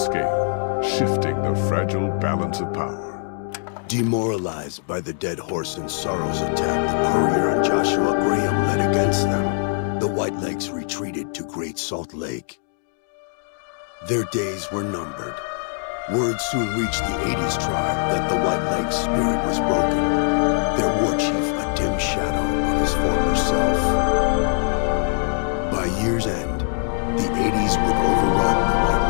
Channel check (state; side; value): silent; right; digital silence